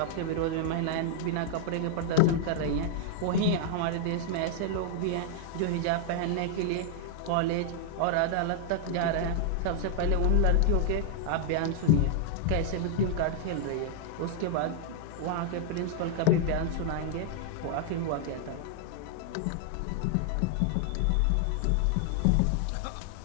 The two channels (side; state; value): both; different; correlation -0.01